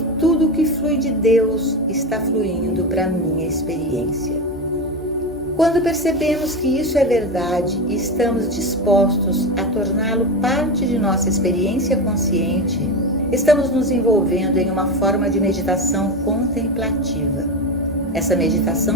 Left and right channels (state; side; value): normal; both; correlation 0.18